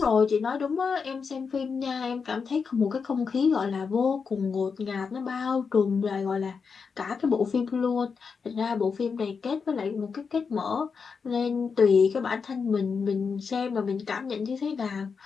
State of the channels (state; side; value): quieter; right; 5.5 dB